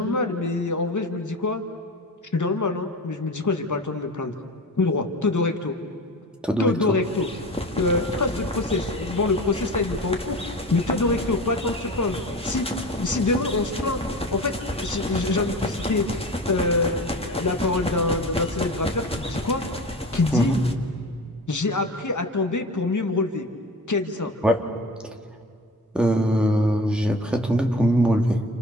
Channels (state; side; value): normal; both; correlation 0.33